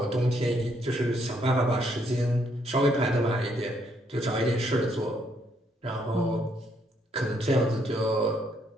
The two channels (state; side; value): normal; both; correlation 0.72